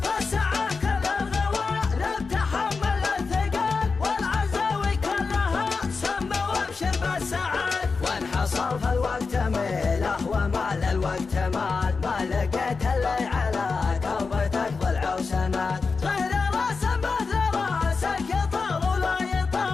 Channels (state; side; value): quieter; right; 4.6 dB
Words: فالساعة كل الغوالب تحمل الثقل والعزاوي كلها سمى وابشر بالسعد وانحصر في الوقت ميله ومال الوقت مال ما لقيت اللي على كربتك ضلع وسند غير راس مثل راسك يطال ولا